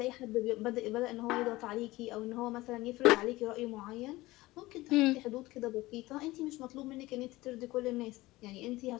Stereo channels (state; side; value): quieter; right; 19.1 dB